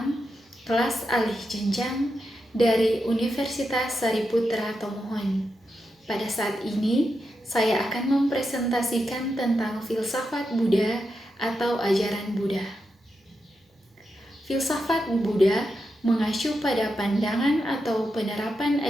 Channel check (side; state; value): both; normal; correlation 0.87